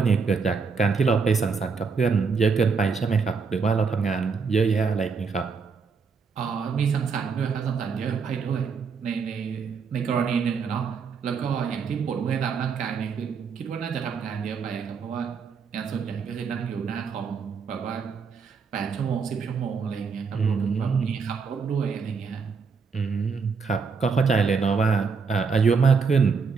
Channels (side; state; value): left; quieter; 5.4 dB